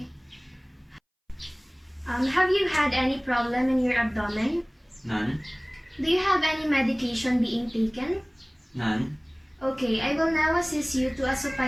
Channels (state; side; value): identical; both; correlation 1.00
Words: Have you had any problem in your abdomen? None. Do you have any medication being taken? None. Okay, I will now assist you to a